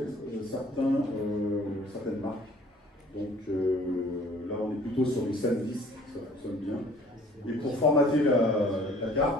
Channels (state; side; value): normal; both; correlation 0.53